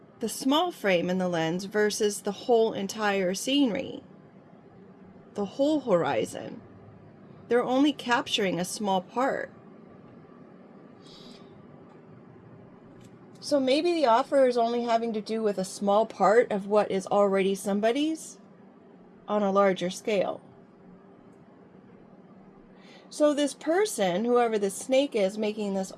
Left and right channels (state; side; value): identical; both; correlation 1.00